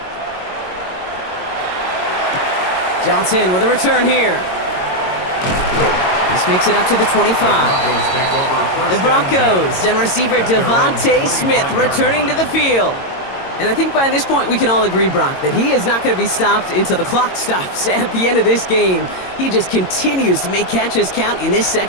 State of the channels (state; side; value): late; right; 22 ms